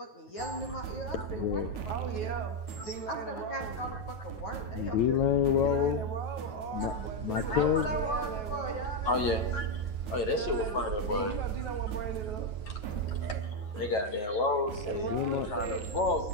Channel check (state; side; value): late; right; 9.3 ms